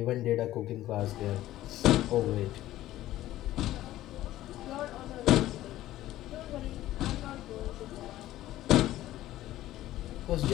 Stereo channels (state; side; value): quieter; right; 14.7 dB